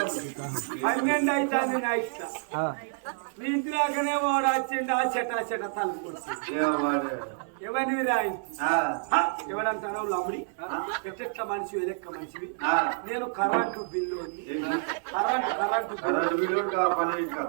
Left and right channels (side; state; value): left; silent; 59 dB below the other